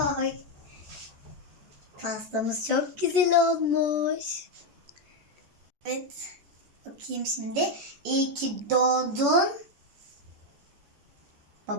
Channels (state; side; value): late; left; 14 ms